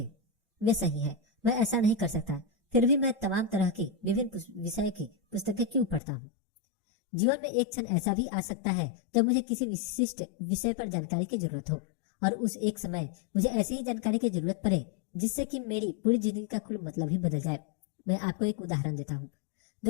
वे सही है, मैं ऐसा नहीं कर सकता, फिर भी मैं तमाम तरह की विभिन्न विषय की पुस्तकें क्यों पढ़ता हूँ? जीवन में एक क्षण ऐसा भी आ सकता है जब मुझे किसी विशिष्ट विषय पर जानकारी की जरूरत हो, और उस एक समय मुझे ऐसी ही जानकारी की जरूरत पड़े जिससे कि मेरी पूरी जिंदगी का कुल मतलब ही बदल जाए। मैं आपको एक उदाहरण देता हूँ।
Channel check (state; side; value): drops out; right; at 6.0 s